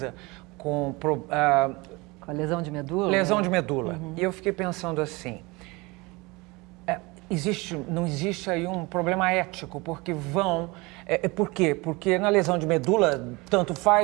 com a lesão de medula? Lesão de medula. E eu fiquei pensando assim, não existe aí um problema ético, porque por quê? Porque na lesão de medula, tanto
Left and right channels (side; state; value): left; quieter; 24.5 dB